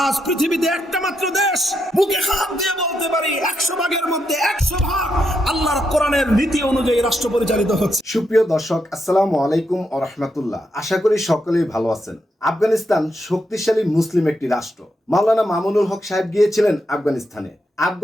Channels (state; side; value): normal; both; correlation 0.81